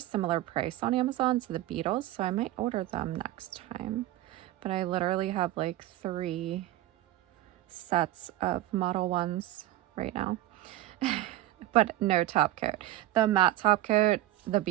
similar price on Amazon to the Beetles, so I might order them next time. But I literally have like 3 sets of Model 1s right now. But no top coat. The matte top coat, the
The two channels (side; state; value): left; quieter; 15.0 dB